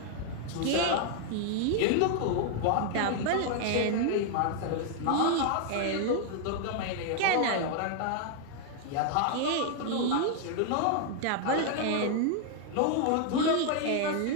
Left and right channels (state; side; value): different; both; correlation 0.00